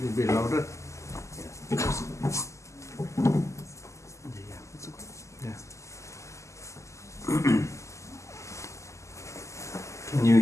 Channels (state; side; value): late; right; 0.14 ms